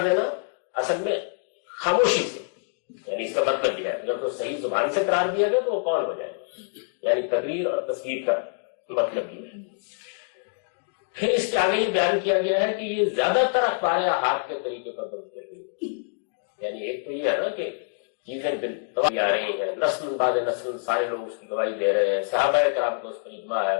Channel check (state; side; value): silent; right; digital silence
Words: دینا اصل میں خاموشی سے، یعنی اس کا مطلب یہ ہے اگر تو صحیح زبان سے قرار دیا گیا تو وہ قول ہو جائے گا، یعنی تقریر اور تصویر کا مطلب یہ ہے۔ پھر اس کے آگے یہ بیان کیا گیا ہے کہ یہ زیادہ تر اخبار احاد کے طریقے پر بنتے ہوئے، یعنی ایک تو یہ ہے نا کہ چیزیں بالتواتر آ رہی ہیں، نسل بعد نسل سارے لوگ اس کی گواہی دے رہے ہیں، صحابہ کرام کو اس پر اجماع